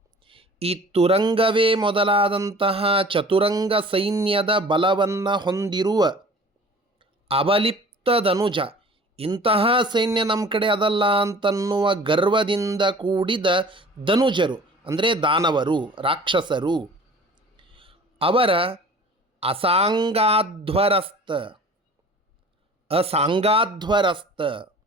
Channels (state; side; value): normal; both; correlation 0.45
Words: ಈ ತುರಂಗವೇ ಮೊದಲಾದಂತಹ ಚತುರಂಗ ಸೈನ್ಯದ ಬಲವನ್ನು ಹೊಂದಿರುವ ಅವಲಿಪ್ತ ಧನುಜ, ಇಂತಹ ಸೈನ್ಯ ನಮ್ಮ ಕಡೆ ಅದಲ್ಲ ಅಂತನ್ನುವ ಗರ್ವದಿಂದ ಕೂಡಿದ ಧನುಜರು, ಅಂದರೆ ದಾನವರು, ರಾಕ್ಷಸರು. ಅವರ ಅಸಾಂಗಾಧ್ವರಸ್ತ, ಅಸಾಂಗಾಧ್ವರಸ್ತ,